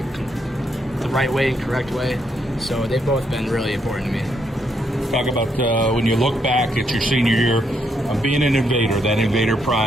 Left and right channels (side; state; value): both; normal; correlation 0.76